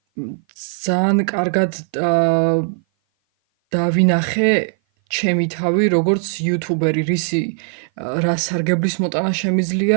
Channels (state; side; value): silent; left; 57 dB below the other